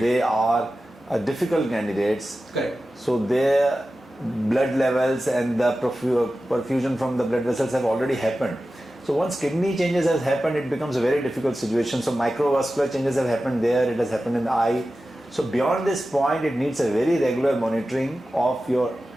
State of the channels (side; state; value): both; normal; correlation 0.94